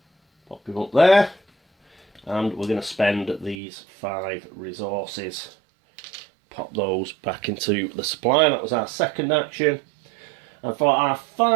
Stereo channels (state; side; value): drops out; left; at 3.6 s